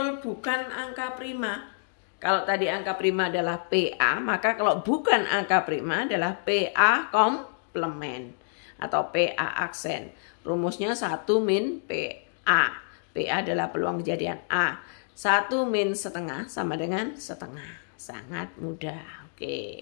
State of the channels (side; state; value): right; silent; digital silence